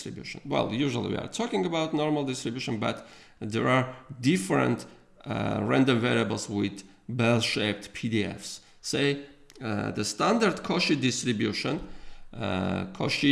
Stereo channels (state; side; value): identical; both; correlation 1.00